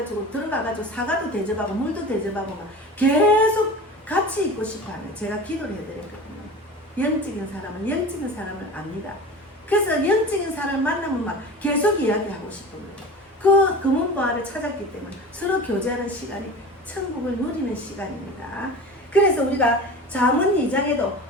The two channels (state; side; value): normal; both; correlation 0.34